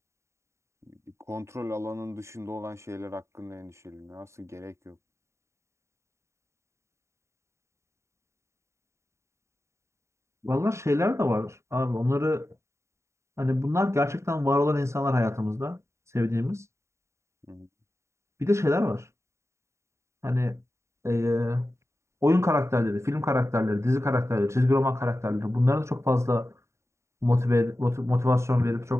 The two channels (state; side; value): late; left; 0.14 ms